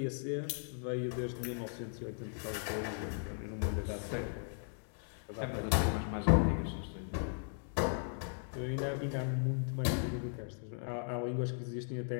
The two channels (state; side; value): silent; right; digital silence